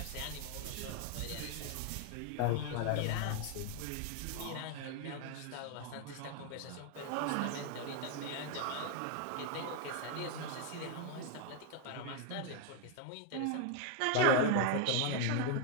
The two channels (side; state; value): both; different; correlation 0.00